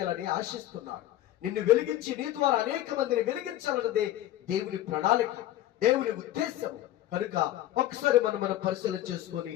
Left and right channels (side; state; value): right; quieter; 13.9 dB